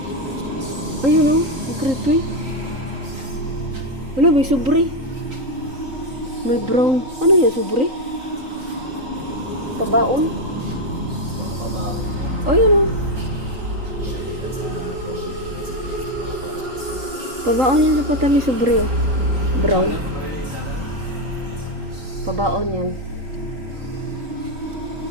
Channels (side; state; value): left; late; 3.9 ms